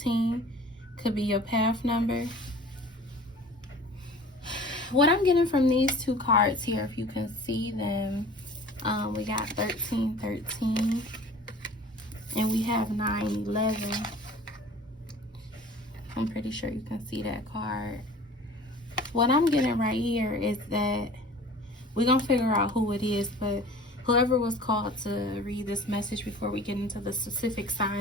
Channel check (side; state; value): both; normal; correlation 0.44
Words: could be your path number. What I'm getting from these two cards here, if you can see them, we got 13, 13, and we have 9, 11. I'm pretty sure you can see that card. What I'm getting right here is that we're going to figure out who it is, but whoever was called to read this message before we get into the specific